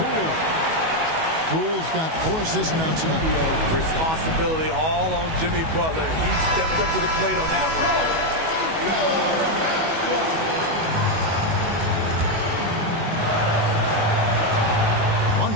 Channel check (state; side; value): late; left; 19 ms